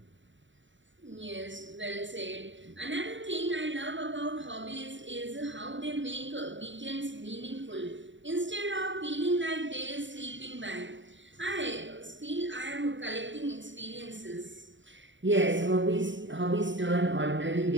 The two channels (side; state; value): left; late; 0.54 ms